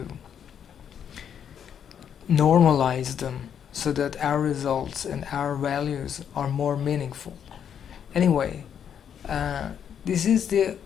normalize them so that our results and our values are more meaningful. Anyway, this is the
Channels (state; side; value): quieter; right; 8.4 dB